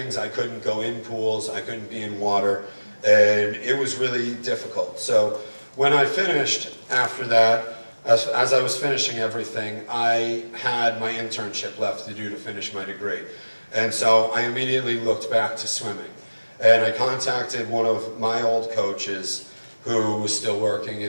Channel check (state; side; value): inverted; both; correlation -1.00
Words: I couldn't go in pools, I couldn't be in water, and it was really difficult. So when I finished after that, as I was finishing everything, I had my internship left to do to finish my degree. And so I immediately looked back to swimming. And I contacted one of my old coaches who was still working